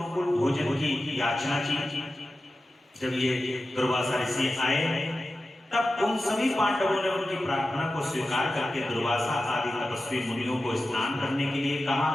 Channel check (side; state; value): both; normal; correlation 0.93